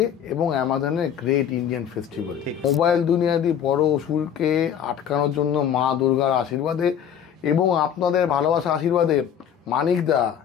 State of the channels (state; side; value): quieter; right; 8.8 dB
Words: এবং অ্যামাজনের গ্রেট ইন্ডিয়ান ফেস্টিভ্যাল। মোবাইল দুনিয়াদি বড় অসুরকে আটকানোর জন্য মা দুর্গার আশীর্বাদে এবং আপনাদের ভালোবাসা আশীর্বাদে Manikda,